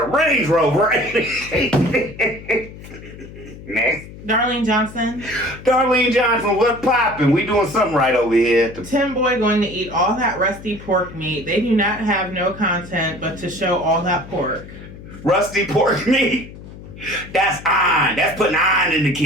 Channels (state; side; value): noise; left; hum, 16 dB below the sound